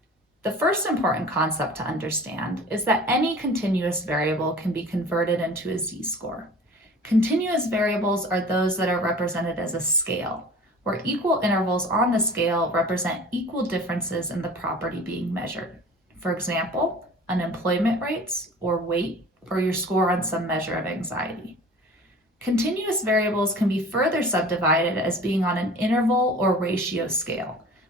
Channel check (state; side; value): normal; both; correlation 0.42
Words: The first important concept to understand is that any continuous variable can be converted into a z-score. Continuous variables are those that are represented as a scale, where equal intervals on the scale represent equal differences in the property being measured. For example, unemployment rates, or weight, or your score on some measure of anxiety. Continuous variables can be further subdivided as being on an interval or ratio scale,